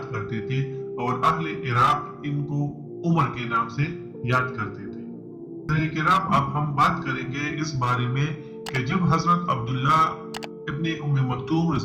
کرتے تھے اور اہل عراق ان کو عمر کے نام سے یاد کرتے تھے۔ کرام، اب ہم بات کریں گے اس بارے میں کہ جب حضرت عبداللہ ابن ام مکتوم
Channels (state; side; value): identical; both; correlation 1.00